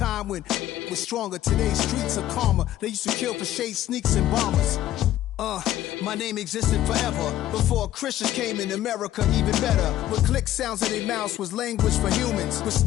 when was stronger. Today's streets are calmer. They used to kill for shade sneaks and bombers. My name existed forever before Christians came in America, even better. With click sounds in their mouths was language for humans. With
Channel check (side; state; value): right; quieter; 13.3 dB